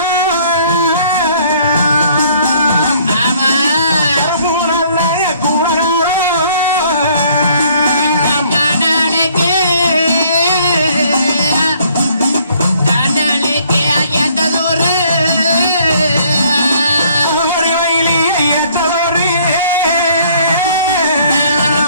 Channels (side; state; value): both; inverted; correlation -0.61